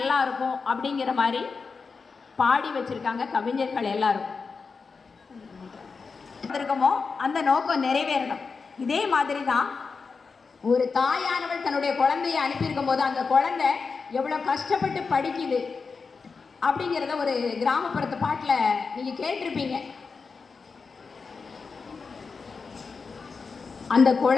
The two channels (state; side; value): quieter; right; 4.9 dB